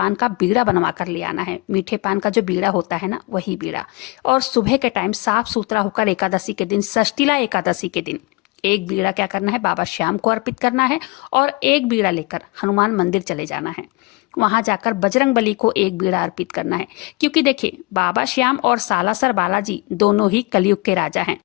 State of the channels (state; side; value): quieter; right; 25.1 dB